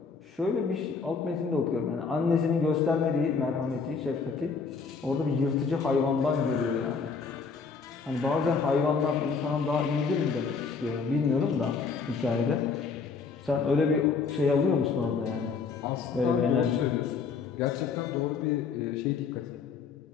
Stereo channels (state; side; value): quieter; right; 5.1 dB